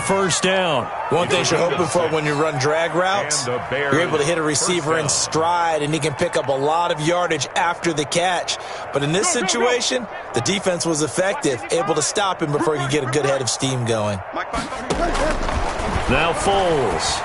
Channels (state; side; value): identical; both; correlation 1.00